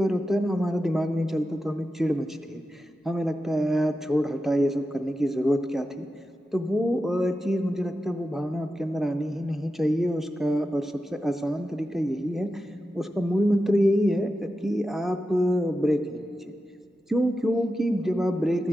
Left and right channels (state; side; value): normal; both; correlation 0.91